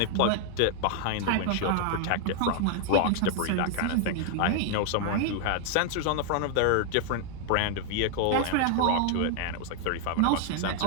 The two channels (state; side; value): different; both; correlation 0.00